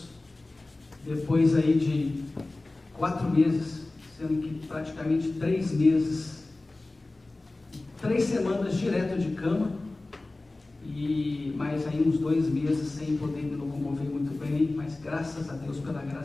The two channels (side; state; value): right; quieter; 3.0 dB